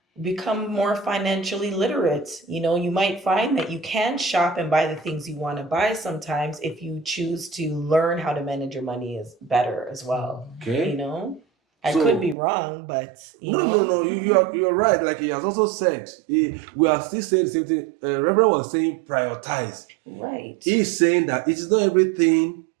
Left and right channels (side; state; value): left; drops out; at 12.4 s